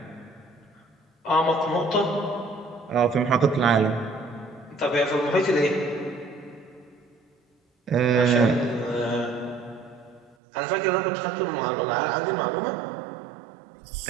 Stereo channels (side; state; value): left; drops out; at 10.4 s